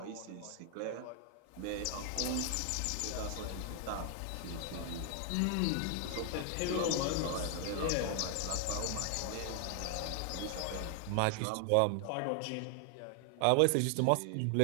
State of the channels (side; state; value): both; different; correlation 0.00